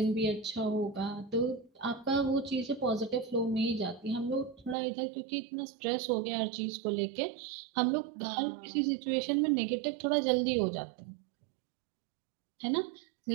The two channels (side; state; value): left; drops out; at 4.8 s